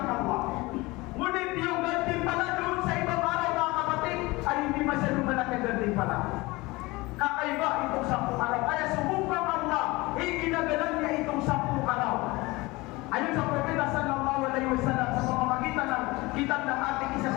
Allah. Ngunit yung gantimpala doon sa ibang araw mga kapatid, ay hindi masyadong malaki ang gantimpala. Kakaiba itong 10 araw. Kaya sumubang Allah, iginagalan niya itong 10 araw. Ayon sa Propeta sallallahu alaihi wasallam sa pamamagitan ng kitab ng ating isa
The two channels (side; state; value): right; quieter; 22.2 dB